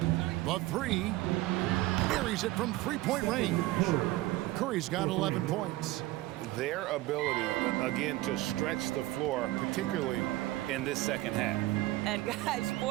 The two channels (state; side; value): quieter; left; 17.9 dB